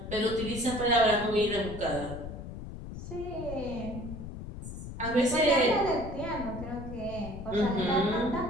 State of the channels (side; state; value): left; noise; rumble, 9 dB below the sound